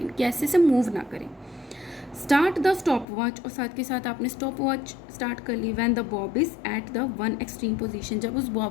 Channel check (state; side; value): drops out; right; at 3.1 s